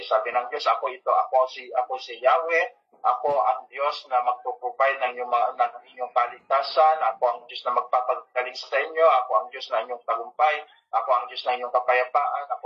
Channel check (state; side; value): identical; both; correlation 1.00